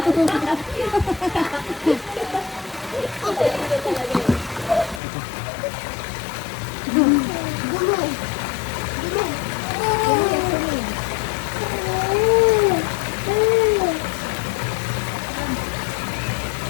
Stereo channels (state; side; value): drops out; right; at 5.0 s